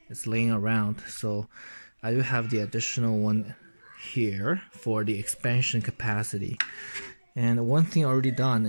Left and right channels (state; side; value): inverted; both; correlation -1.00